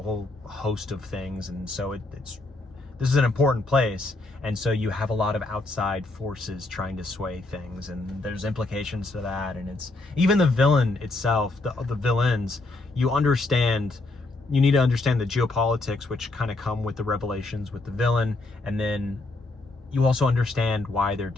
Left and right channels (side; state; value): right; quieter; 3.0 dB